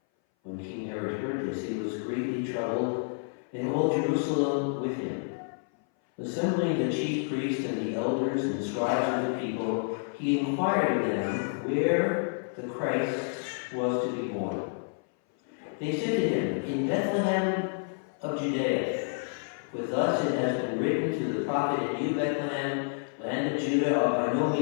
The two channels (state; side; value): silent; right; 57 dB below the other